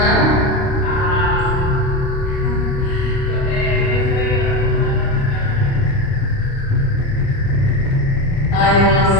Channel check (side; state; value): right; late; 29 ms